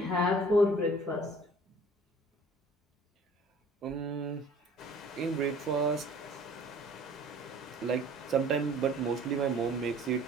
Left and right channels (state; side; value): normal; both; correlation 0.51